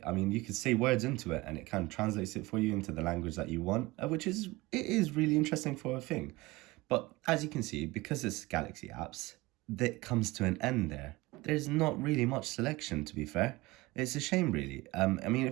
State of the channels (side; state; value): left; quieter; 21.4 dB